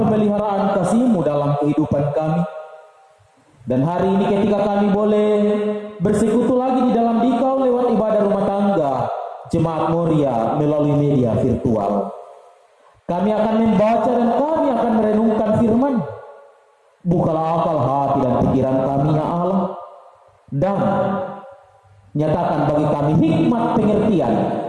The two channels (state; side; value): identical; both; correlation 1.00